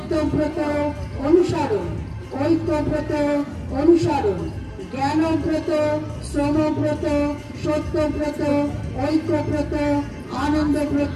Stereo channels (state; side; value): identical; both; correlation 1.00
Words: অনুসরণ, ঐক্যব্রত অনুসরণ। জ্ঞানব্রত, শ্রমব্রত, সত্যব্রত, ঐক্যব্রত,